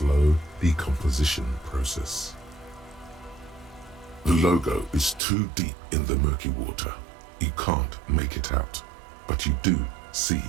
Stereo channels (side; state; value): left; drops out; at 5.2 s